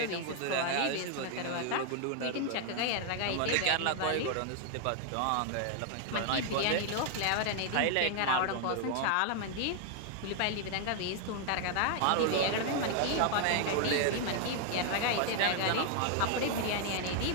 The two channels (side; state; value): both; different; correlation 0.00